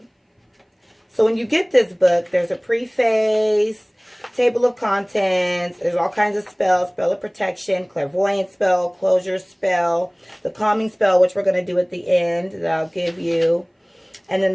So when you get this book, there's a preface, table of contents, there's all kinds of spells, spell of protection, clairvoyant spell, closure spell, the calming spell, which we're going to do at the end that I'll give you. And then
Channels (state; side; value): identical; both; correlation 1.00